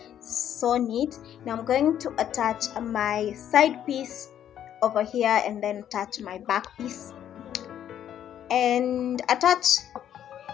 so neat. Now I'm going to attach my side piece over here, and then attach my back piece, and attach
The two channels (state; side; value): quieter; right; 10.3 dB